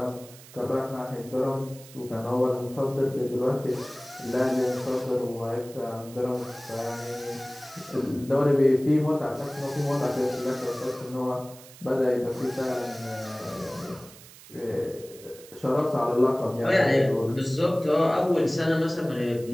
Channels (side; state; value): right; noise; hiss, 20 dB below the sound